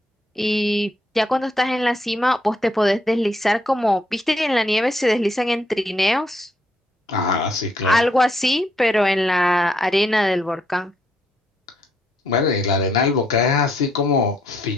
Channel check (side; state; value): both; normal; correlation 0.73